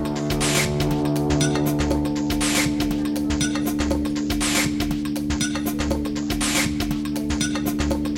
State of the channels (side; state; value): both; identical; correlation 1.00